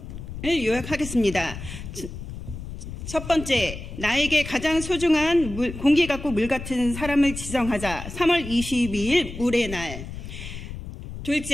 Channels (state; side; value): noise; left; rumble, 10 dB below the sound